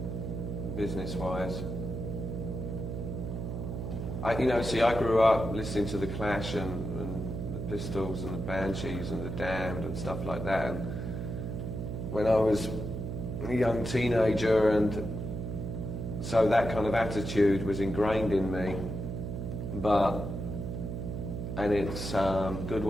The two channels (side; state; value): right; noise; hum, 4 dB below the sound